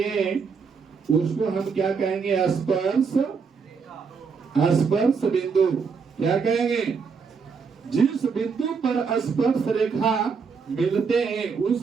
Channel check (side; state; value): left; quieter; 5.5 dB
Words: उसको हम क्या कहेंगे? स्पर्श बिंदु। क्या कहेंगे? जिस बिंदु पर स्पर्श रेखा मिलते हैं उस